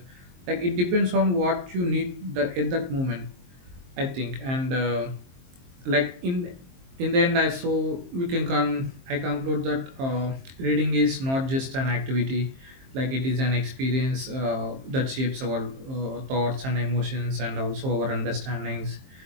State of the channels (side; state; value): left; late; 23 ms